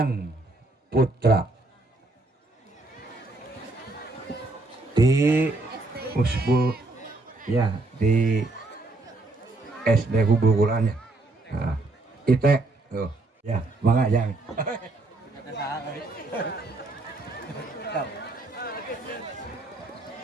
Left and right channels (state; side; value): quieter; left; 3.1 dB